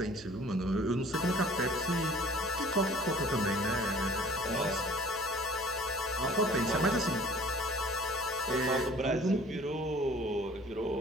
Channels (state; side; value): noise; left; hum, 23 dB below the sound